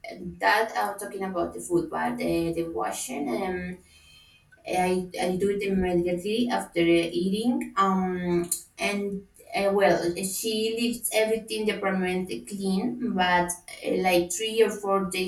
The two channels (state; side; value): identical; both; correlation 1.00